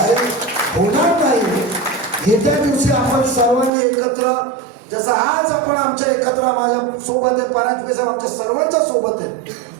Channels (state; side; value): drops out; left; at 3.7 s